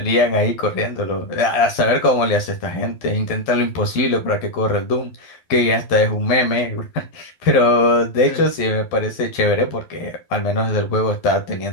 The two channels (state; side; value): late; right; 12 ms